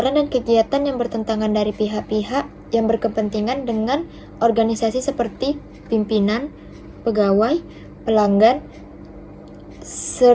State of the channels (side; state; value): both; identical; correlation 1.00